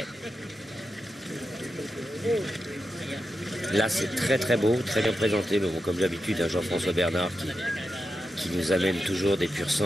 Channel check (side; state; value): both; normal; correlation 0.88